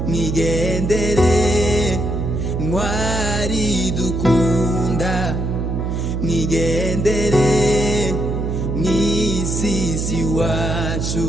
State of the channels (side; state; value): right; noise; hum, 1 dB below the sound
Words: mwigendere ntwari dukunda mwigendere mw'isisi wacu